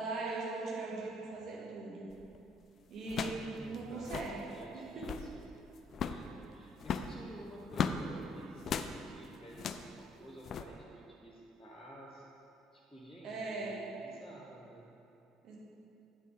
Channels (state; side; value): normal; both; correlation 0.64